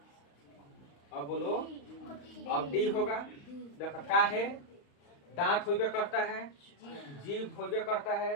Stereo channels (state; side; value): late; right; 35 ms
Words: अब बोलो। अब डी होगा। देखो का है, दांत होबे करता है, जीभ होबे करता है,